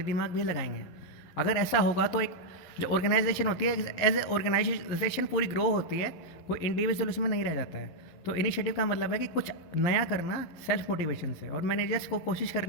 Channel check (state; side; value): late; right; 11 ms